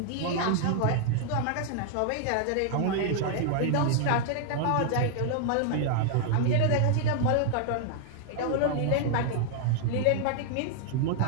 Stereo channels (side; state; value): both; different; correlation 0.00